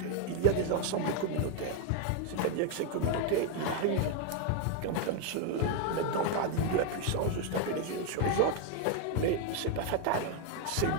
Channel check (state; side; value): different; both; correlation 0.01